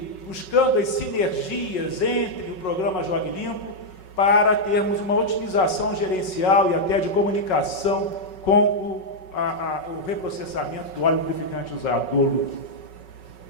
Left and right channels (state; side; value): late; right; 5.4 ms